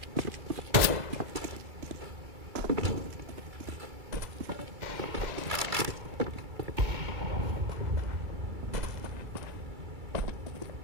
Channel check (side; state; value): left; late; 2.3 ms